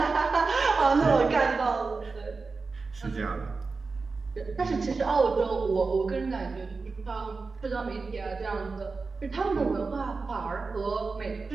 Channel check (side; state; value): left; quieter; 4.2 dB